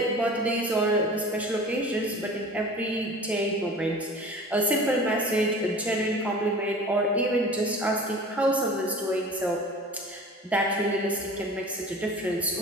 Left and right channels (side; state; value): both; normal; correlation 0.41